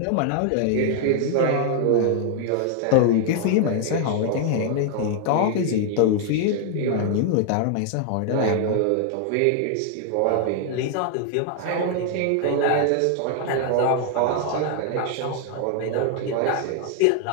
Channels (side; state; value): both; different; correlation 0.00